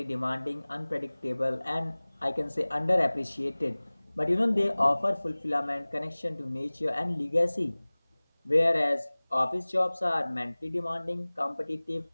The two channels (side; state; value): both; inverted; correlation -1.00